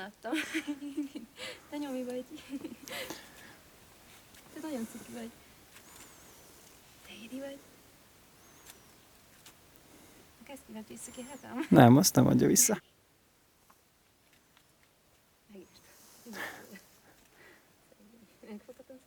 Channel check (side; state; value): both; identical; correlation 1.00